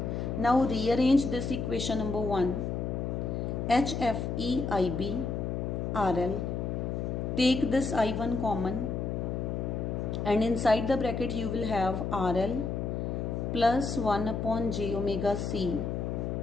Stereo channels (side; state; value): left; noise; hum, 2 dB below the sound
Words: Now rearrange this equation number 1. HFEIB RL. Take this I1 common, and inside the bracket you will have RL plus 1 upon j omega c